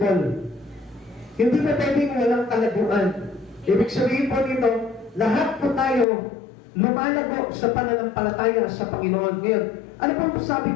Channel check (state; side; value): drops out; right; at 6.1 s